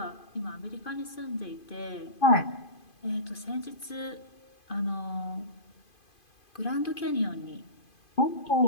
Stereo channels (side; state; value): right; late; 2.5 ms